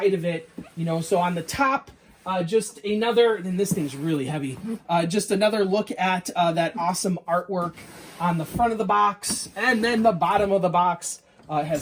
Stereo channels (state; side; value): identical; both; correlation 1.00